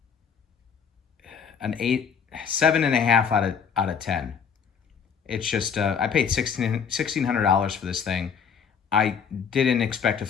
an 7.5 out of 10. It's just I paid $1,600 for this thing. I didn't expect to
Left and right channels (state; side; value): quieter; right; 6.9 dB